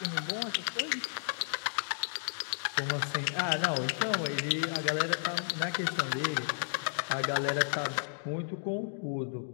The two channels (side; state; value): right; silent; digital silence